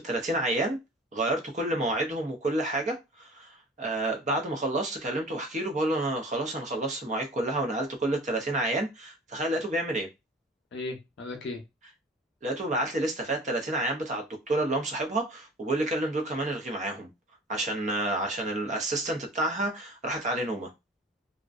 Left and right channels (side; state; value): both; normal; correlation 0.43